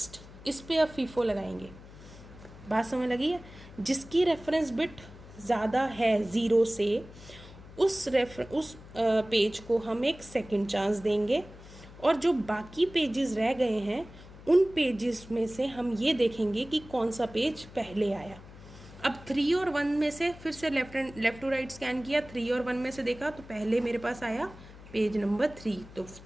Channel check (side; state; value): left; noise; hum, 18 dB below the sound